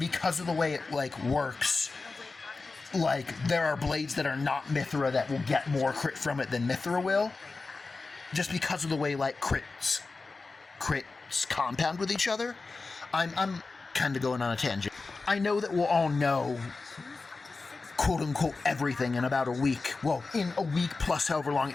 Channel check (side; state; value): right; quieter; 3.9 dB